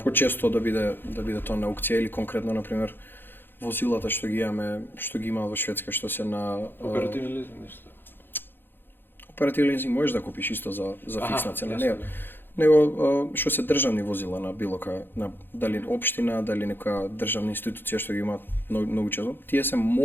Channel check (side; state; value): right; late; 0.099 ms